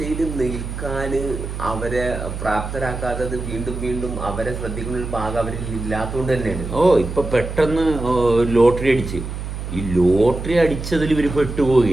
നിൽക്കാൻ അവരെ പ്രാപ്തരാക്കാത്തത് വീണ്ടും അവരെ ശ്രദ്ധിക്കുന്ന ഒരു ഭാഗം അവരിൽ ഇല്ലാത്തതുകൊണ്ട് തന്നെയാണ്. ഇപ്പം പെട്ടെന്ന് ലോട്ടറി അടിച്ച് ഈ ലോട്ടറി അടിച്ചതിൽ ഇവർ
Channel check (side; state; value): right; noise; hum, 7 dB below the sound